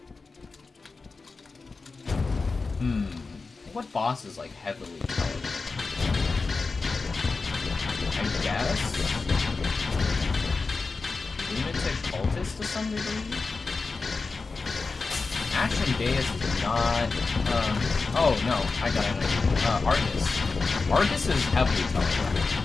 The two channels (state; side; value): quieter; right; 4.1 dB